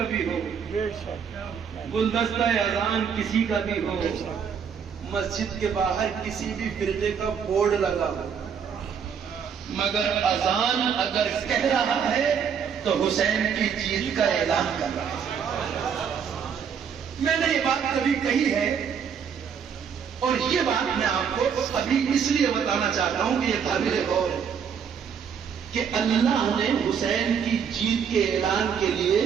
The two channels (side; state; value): left; quieter; 7.2 dB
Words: بھی ہو، گلدستہ اذان کسی کا بھی ہو، مسجد کے باہر کسی بھی فرقے کا بورڈ لگا ہو، مگر اذان اگر کہہ رہا ہے تو حسین کی جیت کا اعلان کر رہا ہے۔ میں نے یہ بات کبھی کہی ہے اور یہ بات میں آپ کو ابھی اس لیے بتانا چاہتا ہوں کہ یہ قابل غور ہے کہ اللہ نے حسین کی جیت کے اعلان کے لیے